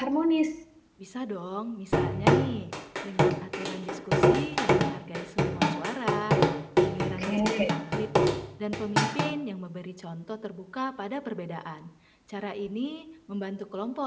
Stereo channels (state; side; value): identical; both; correlation 1.00